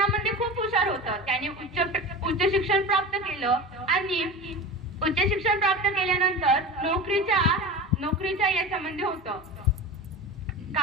खूप हुशार होता. त्याने उच्च शिक्षण प्राप्त केलं आणि उच्च शिक्षण प्राप्त केल्यानंतर नोकरीच्या याच्यामध्ये होतं.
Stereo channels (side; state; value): both; normal; correlation 0.30